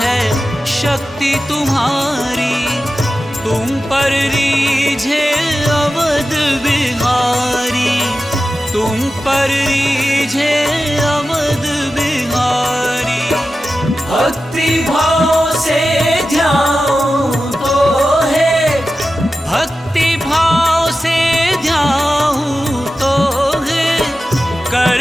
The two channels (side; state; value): both; normal; correlation 0.93